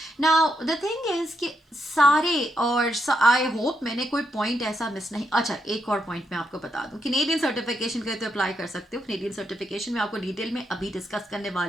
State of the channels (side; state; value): both; normal; correlation 0.80